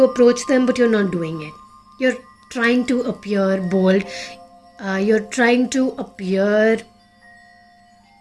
approach them, but you're not doing it. You're trying to appear bold. You're trying to appear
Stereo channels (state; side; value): identical; both; correlation 1.00